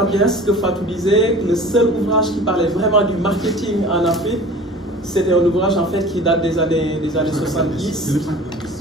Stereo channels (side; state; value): both; normal; correlation 0.42